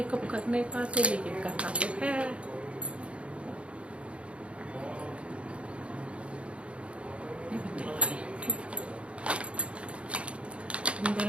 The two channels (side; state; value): left; late; 0.060 ms